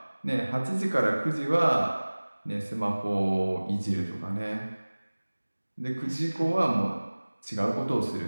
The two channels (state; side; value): inverted; both; correlation -1.00